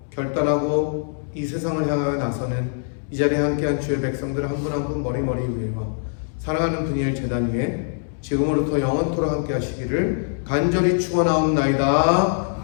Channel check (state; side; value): silent; right; digital silence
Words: 결단하고 이 세상을 향하여 나서는 이 자리에 함께한 주의 백성들 한 분 한 분 머리머리 위에와 사랑하는 분이엘 제단 위에 지금으로부터 영원토록 함께 하시기를 간절히